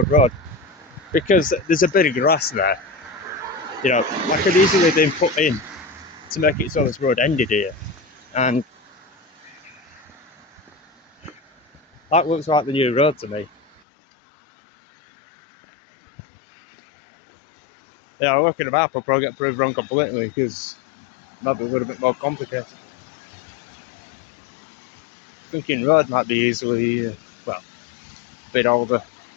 road, because there's a bit of grass there. That could easily have been put in to make it so this road ended here, and that looks like the new road to me. Yeah, looking at the map, I'll probably get proved wrong completely, because it might be a little bit more complicated. Thinking road might be easily, a bit older.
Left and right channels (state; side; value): drops out; right; at 13.8 s